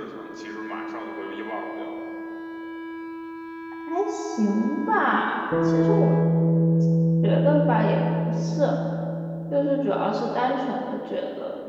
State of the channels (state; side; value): identical; both; correlation 1.00